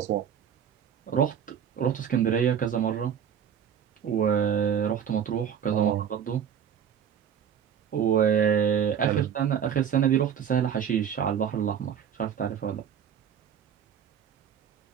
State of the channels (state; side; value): quieter; left; 8.5 dB